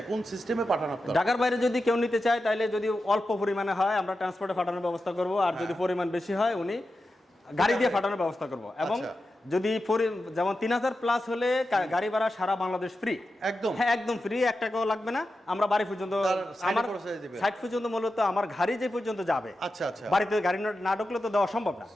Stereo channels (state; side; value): normal; both; correlation 0.91